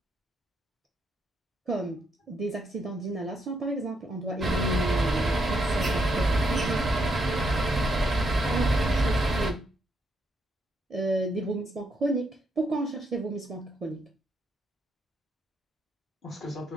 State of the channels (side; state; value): both; normal; correlation 0.77